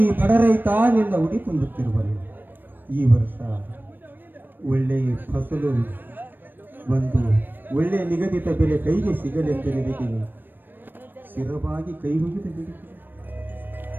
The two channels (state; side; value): late; left; 0.093 ms